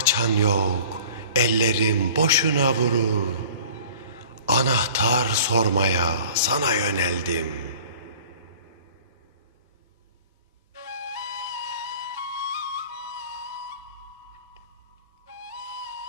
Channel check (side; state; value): both; inverted; correlation -0.46